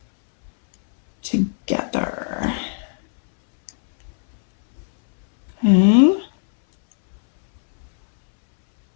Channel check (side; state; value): right; silent; 67 dB below the other